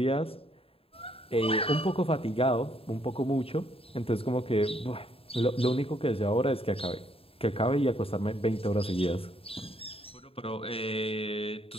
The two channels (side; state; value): right; late; 0.27 ms